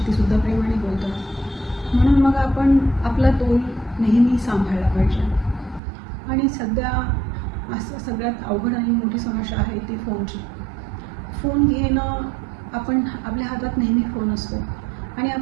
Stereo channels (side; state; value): left; drops out; at 5.8 s